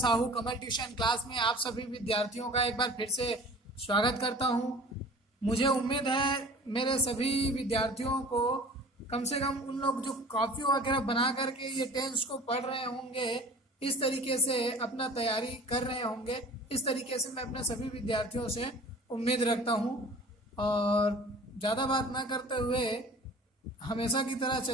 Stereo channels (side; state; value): both; normal; correlation 0.44